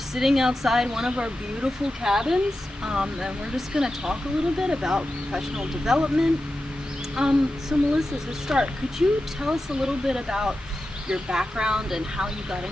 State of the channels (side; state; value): both; normal; correlation 0.91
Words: outside one of our beautiful cabins, and we're just going to talk a little bit about professional development. So Melissa, to start, could you tell us a little bit about your background and how you got